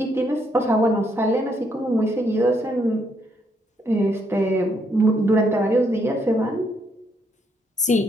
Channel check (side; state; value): both; normal; correlation 0.74